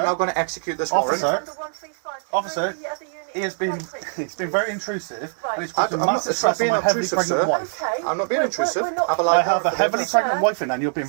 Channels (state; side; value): silent; left; digital silence